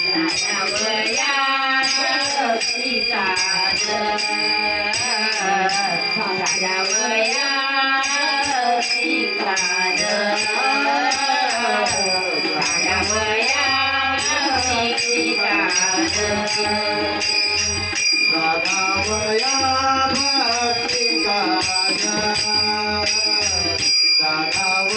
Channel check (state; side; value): identical; both; correlation 1.00